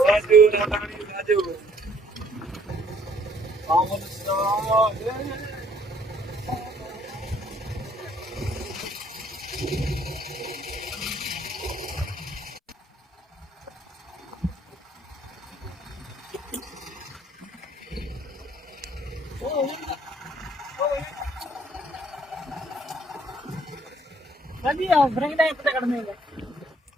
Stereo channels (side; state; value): both; normal; correlation 0.62